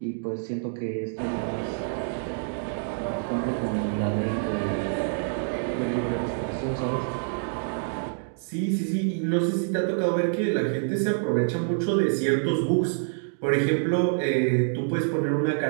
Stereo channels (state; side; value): silent; left; digital silence